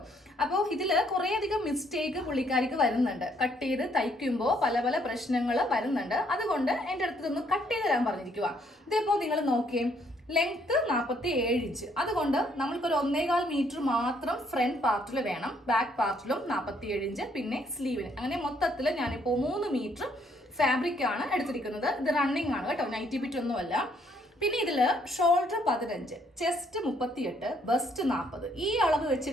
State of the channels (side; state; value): both; normal; correlation 0.68